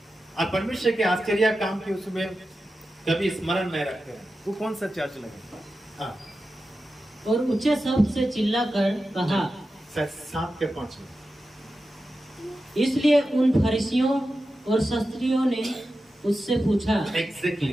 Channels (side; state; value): both; normal; correlation 0.92